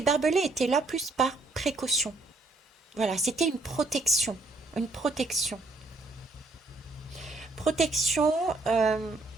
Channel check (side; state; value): left; quieter; 3.2 dB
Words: barbelés étaient là plus par précaution. Voilà, c'était une protection. Une protection. Protection